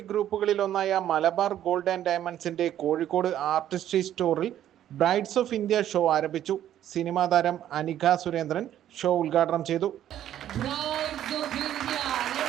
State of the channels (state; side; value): quieter; left; 11.4 dB